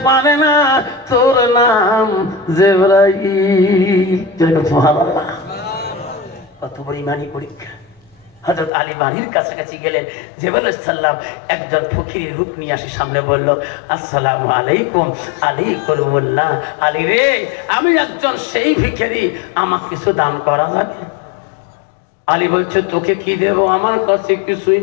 পারে না তোর নাম জিবরাইল। সুবহানাল্লাহ, কত বড় ঈমানী পরীক্ষা। হযরত আলী বাড়ির কাছাকাছি গেলেন, জিবরাইল আলাইহিস সালাম একজন ফকিরের রূপ নিয়ে আসে সামনে বলল আসসালামু আলাইকুম। আলী করুল্লাহ, আলী রে আমি একজন সেই ভিখারি, আমাকে কিছু দান করা যাবে? আলী বলছে তোকে কি দেব, আমার কাছে কিছুই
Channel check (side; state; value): right; drops out; at 8.7 s